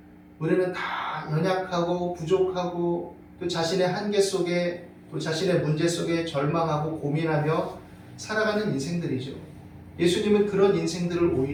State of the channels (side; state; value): both; identical; correlation 1.00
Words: 우리는 다 연약하고 부족하고 또 자신의 한계 속에 또 자신의 문제 속에 절망하고 고민하며 살아가는 인생들이죠. 예수님은 그런 인생들을